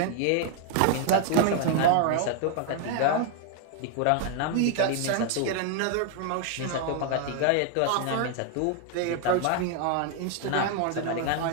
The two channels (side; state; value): both; different; correlation 0.00